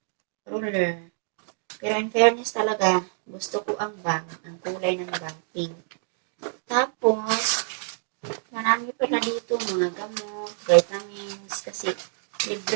Ruler. Pero in fairness talaga, gusto ko ang bag. Ang kulay ng bag, pink. Tapos, marami pala dito mga gamot, vitamins, kasi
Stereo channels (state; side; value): silent; left; digital silence